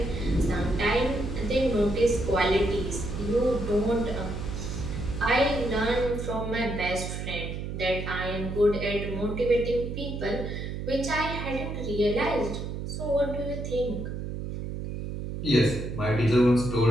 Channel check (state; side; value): noise; right; hum, 5 dB below the sound